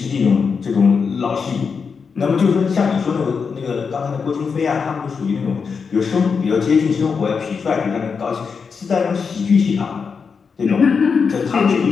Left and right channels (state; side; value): quieter; right; 5.6 dB